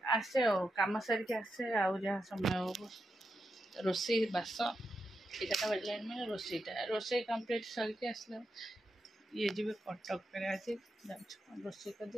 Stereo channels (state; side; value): normal; both; correlation 0.86